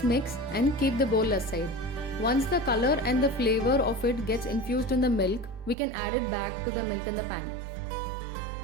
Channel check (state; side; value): drops out; left; at 5.8 s